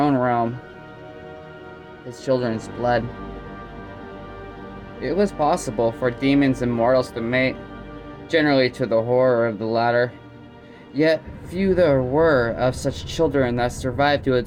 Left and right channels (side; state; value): both; identical; correlation 1.00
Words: realm. His children's blood. It was possible for demons and mortals to mate, generally to the horror of the latter. Yet few there were of such children that survived to